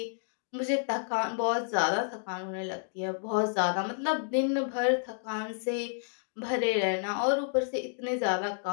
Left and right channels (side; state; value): right; silent; digital silence